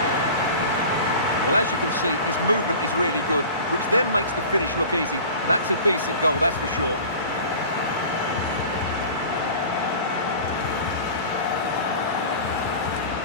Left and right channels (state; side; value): inverted; both; correlation -0.39